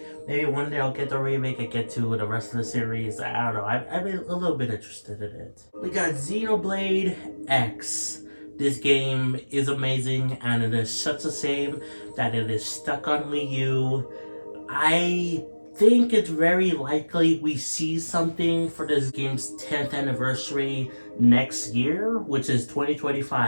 maybe one day I'll get the remake and get to the rest of the series. I don't know, I'm a little bit interested in it. We got Xenoblade X. This game is amazing, and it is such a shame that it is stuck on Wii U. I think it's very likely we see something for this game's 10th anniversary next year, which is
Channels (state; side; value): inverted; both; correlation -1.00